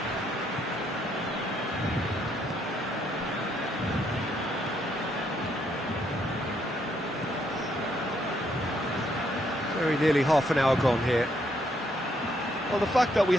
Very nearly half an hour gone here. Well, the fact that we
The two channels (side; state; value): both; normal; correlation 0.73